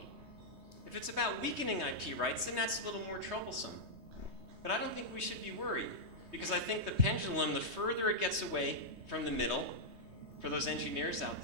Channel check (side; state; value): left; late; 3.2 ms